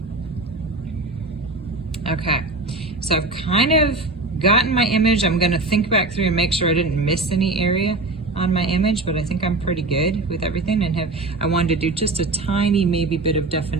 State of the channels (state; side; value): quieter; left; 3.2 dB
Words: Okay, so I've kind of gotten my image. I'm gonna think back through and make sure I didn't miss any area on my image, but I think I'm pretty good with everything. And I wanted to do just a tiny, maybe bit of